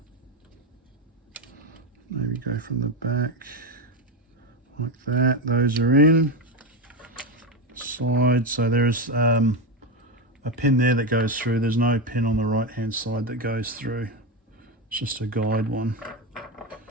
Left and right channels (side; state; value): both; normal; correlation 0.13